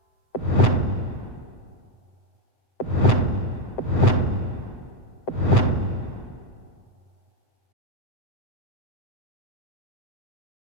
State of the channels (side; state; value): right; late; 7.8 ms